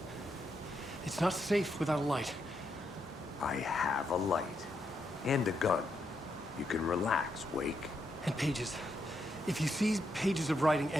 It's not safe without a light. I have a light. And a gun. You can relax, Wake. And pages. If you see pages of writing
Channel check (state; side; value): normal; both; correlation 0.80